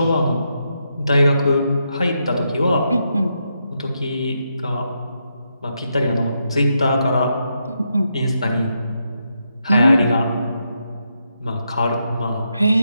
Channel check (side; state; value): both; inverted; correlation -0.82